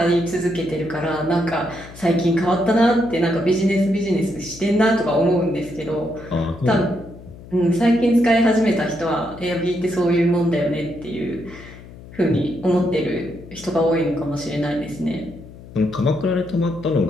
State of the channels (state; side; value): noise; left; hum, 17 dB below the sound